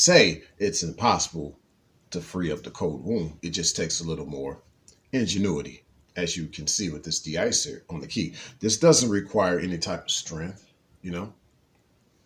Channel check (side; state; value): both; identical; correlation 1.00